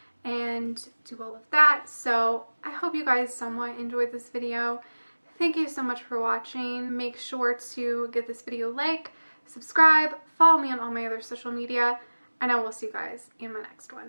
and do all of that. So I hope you guys somewhat enjoyed this video. Thank you so much for watching. Make sure to give this video a like, subscribe, follow me on all my other social media, and I will see you guys in my next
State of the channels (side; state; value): both; inverted; correlation -1.00